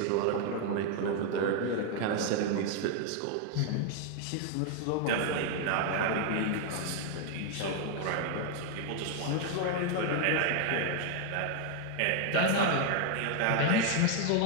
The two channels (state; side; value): different; both; correlation 0.00